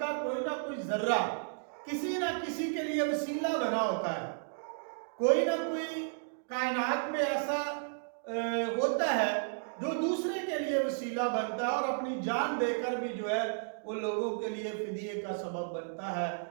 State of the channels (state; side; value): silent; left; digital silence